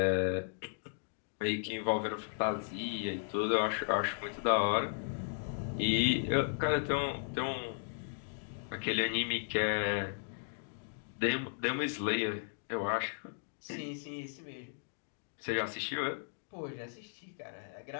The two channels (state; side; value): silent; right; digital silence